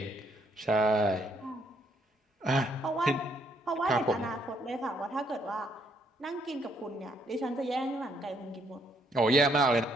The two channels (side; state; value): both; normal; correlation 0.71